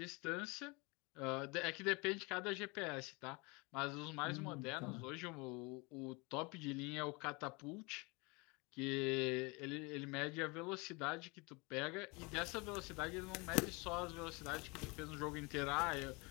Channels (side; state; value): right; quieter; 27.6 dB